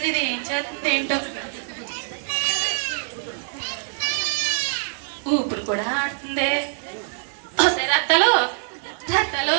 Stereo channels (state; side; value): silent; left; 63 dB below the other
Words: ఇది ఏం చేస్తుంది ఏంటో. ఊపిరి కూడా ఆడుతుంది. వస్తే రత్తలు రత్తలు,